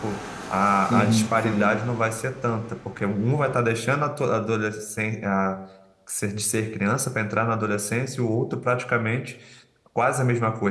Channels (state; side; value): identical; both; correlation 1.00